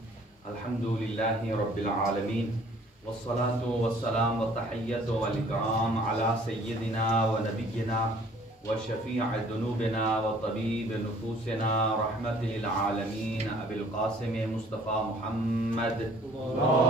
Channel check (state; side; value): normal; both; correlation 0.56